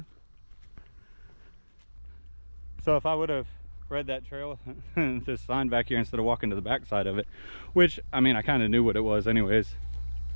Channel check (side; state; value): both; inverted; correlation -1.00